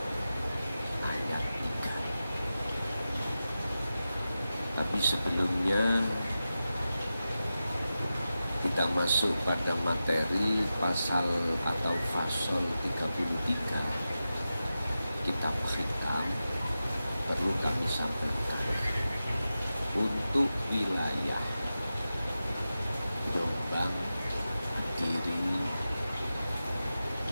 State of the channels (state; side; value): inverted; both; correlation -0.92